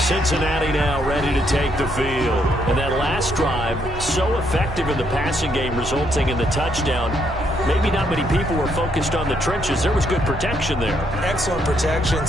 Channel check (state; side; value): noise; right; rumble, 12 dB below the sound